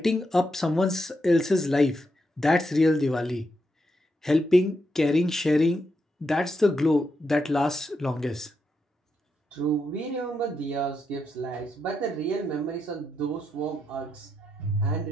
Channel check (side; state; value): both; normal; correlation 0.83